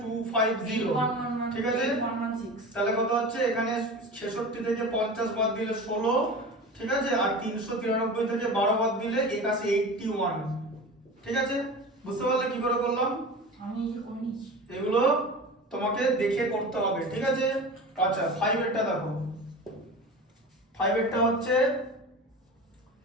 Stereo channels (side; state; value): both; normal; correlation 0.32